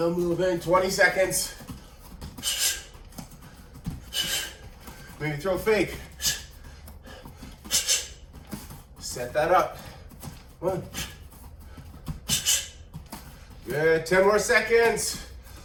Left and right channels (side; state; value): both; identical; correlation 1.00